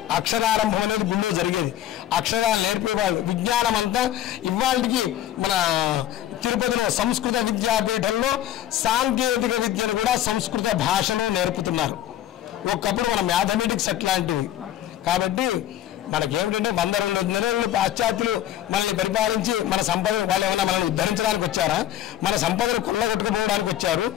అక్షరారంభం అనేది గుళ్ళో జరిగేది. అక్షరాలు నేర్పేవాళ్ళు. విజ్ఞానం అంతా ఇవాళకి మన తిరుపతిలో సంస్కృత విద్యాపీఠంలో సాంకేతిక విద్యను కూడా సంస్కృత భాషలో నేర్పుతున్నారు. ఒకప్పుడు మన మ్యాథమెటిక్స్ అట్లాంటివి. కాబట్టి మనకేమిటంటే 100-200 నెలలు పాశ్చాత్యులు మనల్ని పరిపాలించి మన సంపద వాళ్ళు ఏమన్నా మనల్ని ఉద్ధరించడానికి వచ్చారా? మన సంపదను కొల్లగొట్టుకుపోవడానికి వచ్చారు.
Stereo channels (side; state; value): right; quieter; 11.8 dB